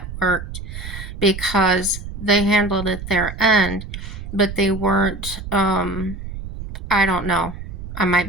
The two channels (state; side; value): noise; right; rumble, 9 dB below the sound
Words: worked because they handled it their end, but they weren't, I don't know. I